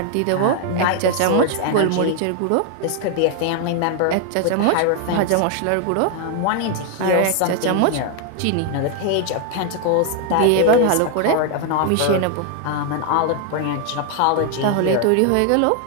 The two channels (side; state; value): both; different; correlation 0.00